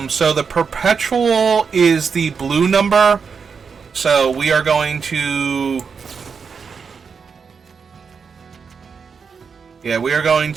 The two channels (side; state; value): left; quieter; 5.8 dB